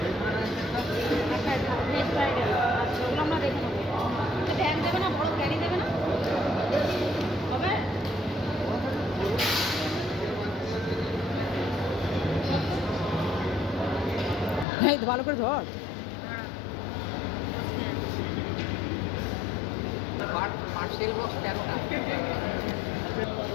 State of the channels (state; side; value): drops out; right; at 14.7 s